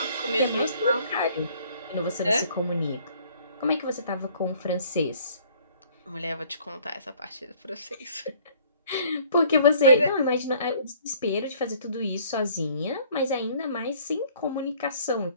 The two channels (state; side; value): inverted; both; correlation -0.57